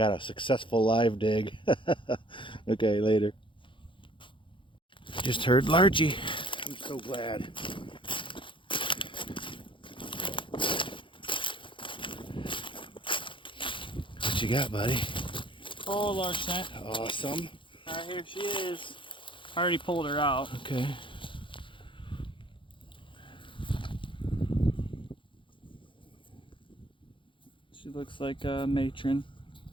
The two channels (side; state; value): right; late; 0.24 ms